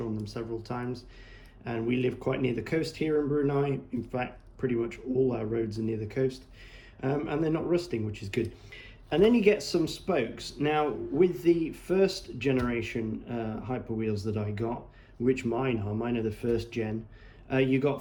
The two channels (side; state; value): both; identical; correlation 1.00